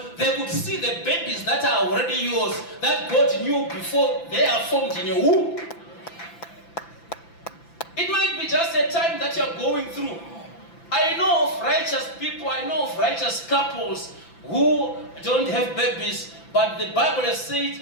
they could see the babies that are already yours, that God knew before they are formed in your womb. It might be just a time that you are going through. I know of righteous people, I know of righteous couples who don't have babies, but the Bible has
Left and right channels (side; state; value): right; late; 5.9 ms